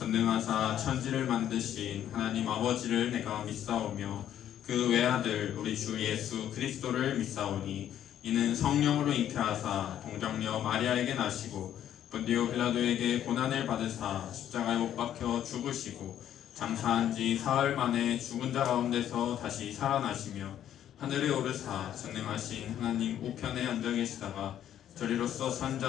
천지를 만드신 하나님 아버지를 내가 믿사오며 그 외아들 우리 주 예수 그리스도를 믿사오니 이는 성령으로 잉태하사 동정녀 마리아에게 나시고 본디오 빌라도에게 고난을 받으사 십자가에 못 박혀 죽으시고 장사한 지 사흘 만에 죽은 자 가운데서 다시 살아나시며 하늘에 오르사 전능하신 하나님 우편에 앉아 계시다가 저리로서 산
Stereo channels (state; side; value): quieter; right; 10.8 dB